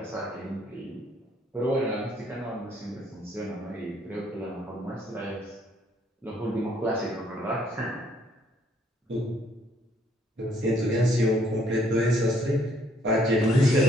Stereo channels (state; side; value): normal; both; correlation 0.66